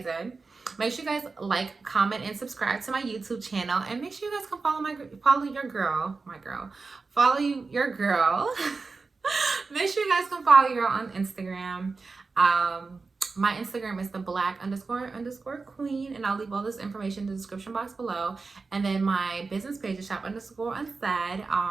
make sure you guys like, comment, and subscribe to my YouTube channel, and make sure you guys can follow your girl. Make sure you guys can follow your girl on Instagram. My Instagram is the black__queen, and I'll leave all this information in the description box below. And then my business page is shop_unsaid.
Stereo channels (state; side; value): quieter; left; 4.2 dB